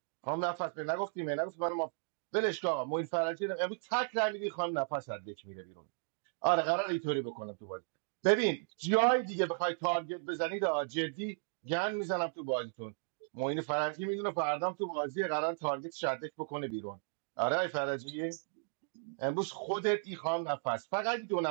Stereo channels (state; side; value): silent; left; digital silence